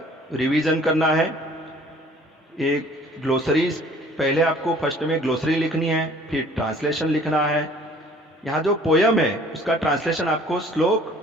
रिवीजन करना है। एक ग्लोसरी, पहले आपको फर्स्ट में ग्लोसरी लिखनी है, फिर ट्रांसलेशन लिखना है। यहाँ जो पोयम है उसका ट्रांसलेशन आपको श्लोक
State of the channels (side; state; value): both; normal; correlation 0.53